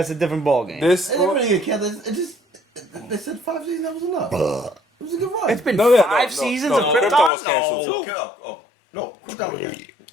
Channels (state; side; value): drops out; right; at 7.3 s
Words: a different ballgame. This. It didn't really get canceled. It just they said 5 seasons. That was enough. It was a good run. It's been No, yeah, no, 5 no, seasons no, of Krypton Krypton? was canceled. No. Okay. No, Krypton.